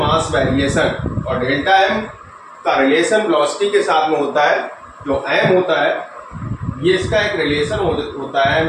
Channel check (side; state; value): both; identical; correlation 1.00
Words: वेरिएशन और डेल्टा m का रिलेशन वेलोसिटी के साथ में होता है। जो m होता है ये इसका एक रिलेशन होता है, m